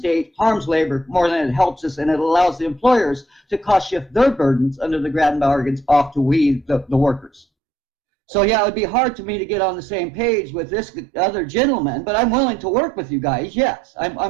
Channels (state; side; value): drops out; left; at 7.5 s